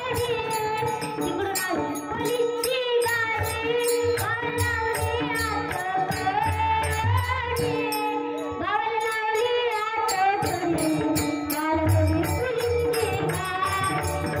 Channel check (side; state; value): both; identical; correlation 1.00